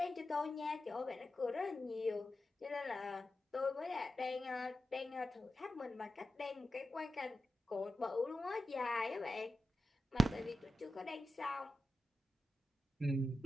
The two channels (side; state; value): both; normal; correlation 0.90